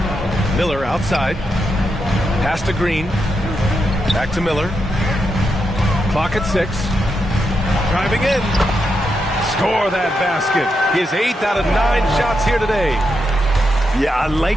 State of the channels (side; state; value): both; normal; correlation 0.84